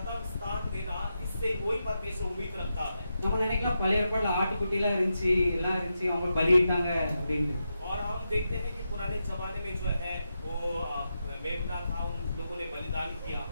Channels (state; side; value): inverted; both; correlation -0.87